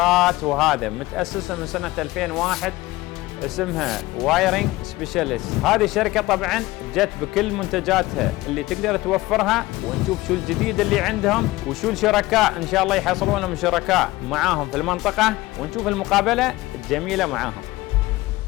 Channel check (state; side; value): quieter; right; 19.0 dB